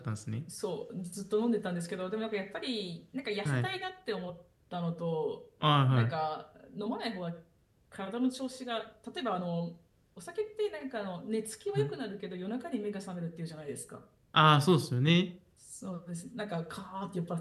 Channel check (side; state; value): both; identical; correlation 1.00